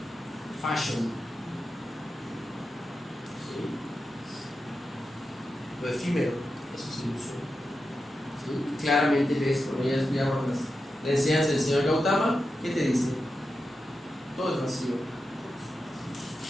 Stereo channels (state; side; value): normal; both; correlation 0.90